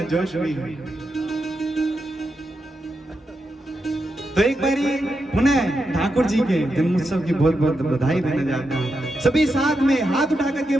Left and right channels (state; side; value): normal; both; correlation 0.86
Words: जोश भी है। तो एक बारी पुनः ठाकुर जी के जन्मोत्सव की बहुत बहुत बधाई देने जाता हूँ। सभी साथ में हाथ उठा करके